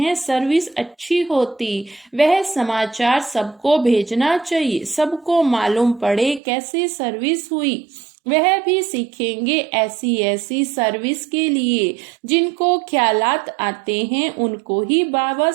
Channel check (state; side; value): drops out; left; at 6.4 s